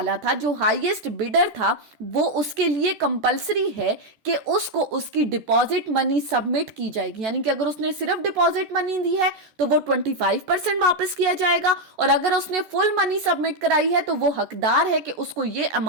था, जो हाईएस्ट बिडर था, वो उसके लिए कंपलसरी है कि उसको उसकी डिपॉजिट मनी सबमिट की जाएगी। यानी कि अगर उसने सिर्फ डिपॉजिट मनी दी है तो वो 25% वापस किया जाएगा, और अगर उसने फुल मनी सबमिट कराई है तो वो हकदार है कि उसको ये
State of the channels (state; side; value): late; left; 14 ms